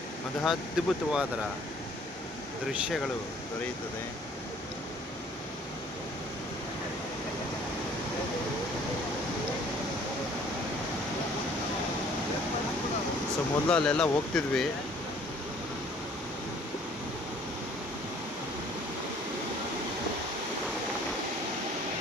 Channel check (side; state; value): both; normal; correlation 0.56